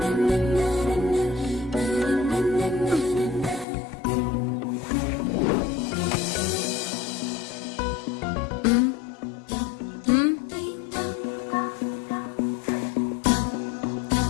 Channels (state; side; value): drops out; right; at 3.7 s